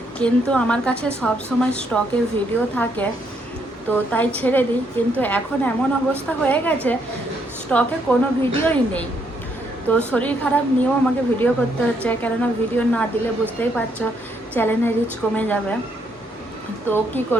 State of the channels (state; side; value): normal; both; correlation 0.73